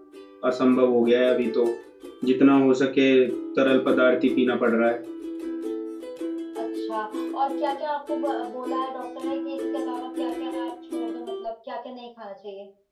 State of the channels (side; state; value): both; identical; correlation 1.00